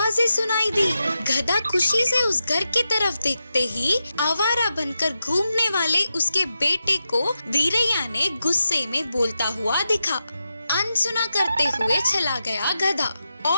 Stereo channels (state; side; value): inverted; both; correlation -0.89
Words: सुनाई दी। गधा खुशी से उस घर की तरफ देखते ही आवारा बनकर घूमने वाले उसके बेटे को वीरैया ने गुस्से में बोलता हुआ दिखा। अनसुना करते हुए चला गया गधा।